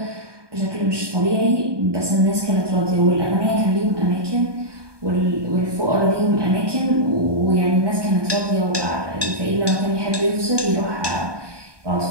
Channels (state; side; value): late; left; 1.2 ms